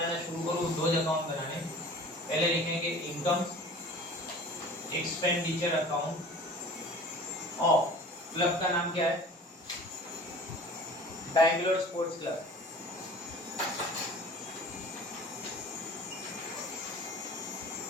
शुरू करो, दो अकाउंट बनाने। पहले लिखेंगे income expenditure account of club का नाम क्या है, Bangalore sports club.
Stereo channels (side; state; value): both; normal; correlation 0.43